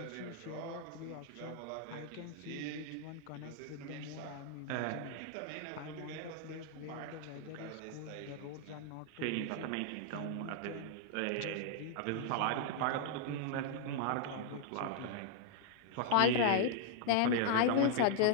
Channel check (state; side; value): different; both; correlation 0.00